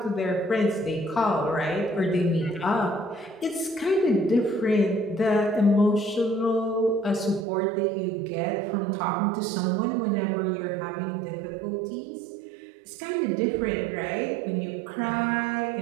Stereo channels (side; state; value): left; drops out; at 7.5 s